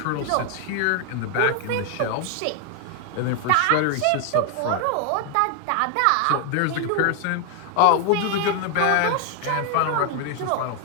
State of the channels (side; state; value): both; different; correlation 0.00